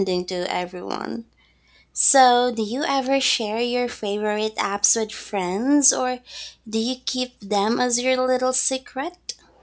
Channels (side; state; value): both; identical; correlation 1.00